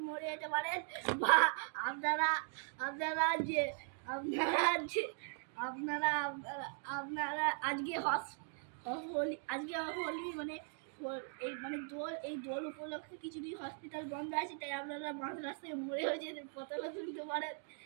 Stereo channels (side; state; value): left; silent; 51 dB below the other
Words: মরে যেতে পারেন, বা আপনারা আপনারা যে আপনারা যে আপনারা আপনারা আজকে হোলি মানে এই মানে দোল উপলক্ষে কিছুদিন হসপিটাল বন্ধ আছে, তাই আপনারা মাঝ রাস্তায় মরে হয়ে যেতে পতলা তুলতে পারেন।